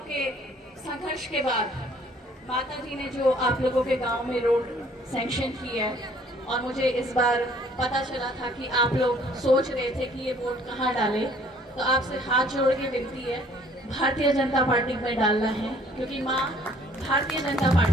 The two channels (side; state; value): both; normal; correlation 0.58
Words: के संघर्ष के बाद माता जी ने जो आप लोगों के गांव में रोड सैंक्शन की है, और मुझे इस बार पता चला था कि आप लोग सोच रहे थे कि ये वोट कहाँ डालें, तो आपसे हाथ जोड़ के विनती है भारतीय जनता पार्टी में डालना है, क्योंकि माँ भारतीय जनता